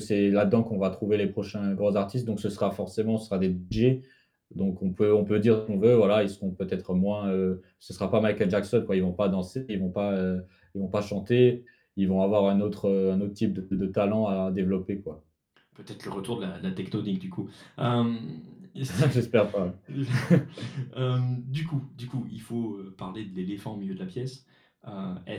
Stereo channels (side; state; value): both; identical; correlation 1.00